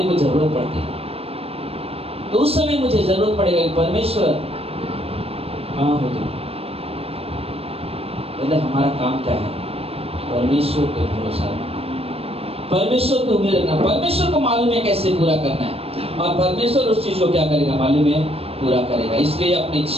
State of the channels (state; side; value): late; left; 0.28 ms